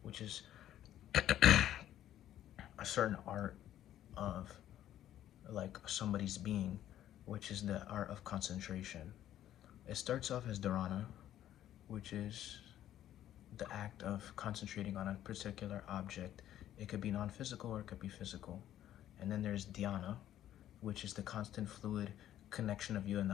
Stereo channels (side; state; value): right; quieter; 12.0 dB